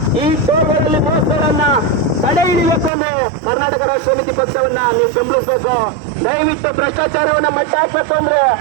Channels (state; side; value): drops out; left; at 2.9 s